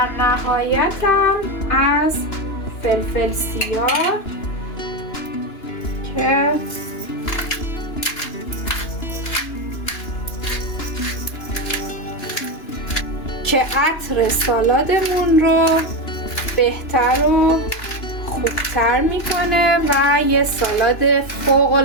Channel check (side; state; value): right; late; 2.9 ms